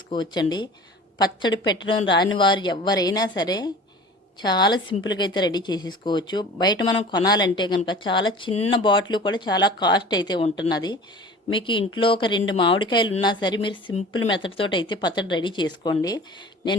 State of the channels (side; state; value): both; normal; correlation 0.42